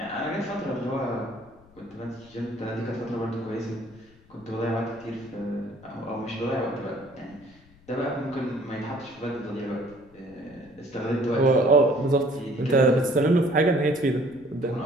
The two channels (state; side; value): noise; left; rumble, 27 dB below the sound